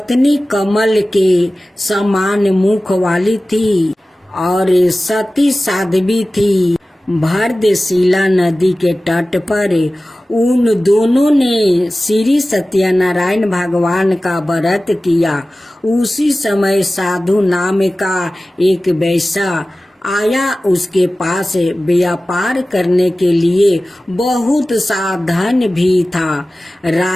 कमल के समान मुख वाली थी और सती साध्वी थी। भरतशिला नदी के तट पर उन दोनों ने श्री सत्यनारायण भगवान का व्रत किया। उसी समय साधु नाम का एक वैश्य आया उसके पास व्यापार करने के लिए बहुत सा धन भी था।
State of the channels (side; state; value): both; normal; correlation 0.96